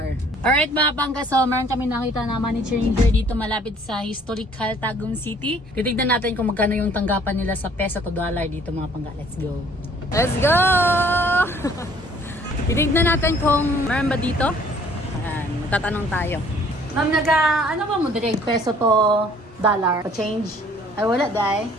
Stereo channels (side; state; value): both; normal; correlation 0.57